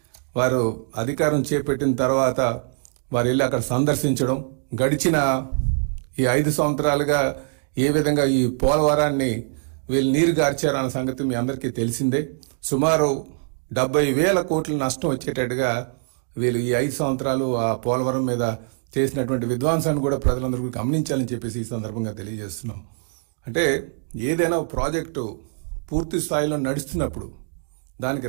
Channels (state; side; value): silent; left; 61 dB below the other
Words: వారు అధికారం చేపట్టిన తర్వాత వారు వెళ్ళి అక్కడ సందర్శించడం, గడిచిన ఈ 5 సంవత్సరాలుగా ఏ విధంగా ఈ పోలవరాన్ని వీళ్ళు నీరు గార్చారన్న సంగతి మీ అందరికీ తెలిసిందే. సుమారు 70,000 కోట్ల నష్టం వచ్చేటట్టుగా వీళ్ళు ఈ 5 సంవత్సరాలు ఆ పోలవరం మీద చేసినటువంటి విధ్వంసాన్ని కూడా ప్రజలందరూ గమనించాలని చెప్పేసి ఈ సందర్భంగా తెలియజేస్తున్నాం. అంటే ఏదైనా ప్రాజెక్టు పూర్తి స్థాయిలో నడుస్తున్నప్పుడు దానికి